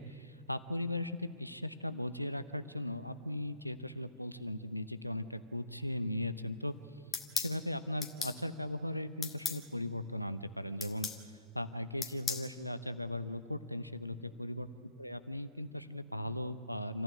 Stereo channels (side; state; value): both; inverted; correlation -0.67